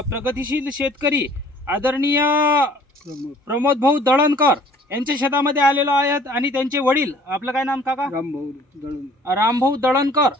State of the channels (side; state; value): both; normal; correlation 0.54